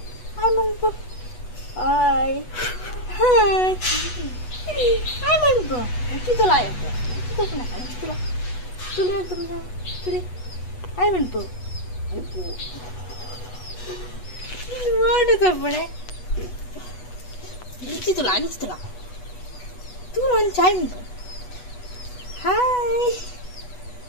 Hi manpo. Hi. Hi. Hi manpo. Kitula yapo. Kitula na kitula. Tuli antumna. Tuli. Hi manpo. Ipu. What is happening? Kitula. Turun time. Hi.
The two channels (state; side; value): late; right; 8.2 ms